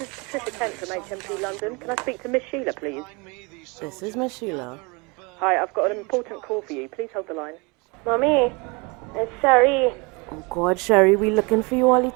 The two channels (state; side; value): quieter; left; 28.3 dB